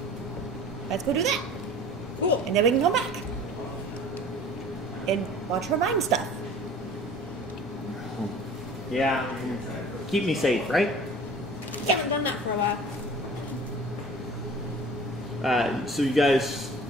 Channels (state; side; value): normal; both; correlation 0.44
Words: Let's go do that. Cool. And then we can come back. And watch her mine stuff. Yeah, keep me safe, right? Haven't done that for a while. So you guys